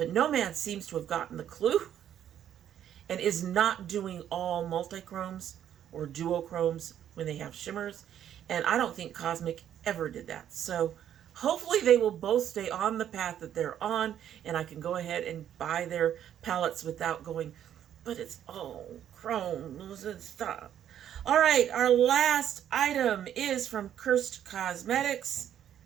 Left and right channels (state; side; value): quieter; left; 10.2 dB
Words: Nomad seems to have gotten the clue and is not doing all multichromes or duochromes when they have shimmers, and I don't think Cosmic ever did that. So hopefully they will both stay on the path that they're on, and I can go ahead and buy their palettes without going, but it's all chromes and stuff. All right, our last item is from Curst Cosmetics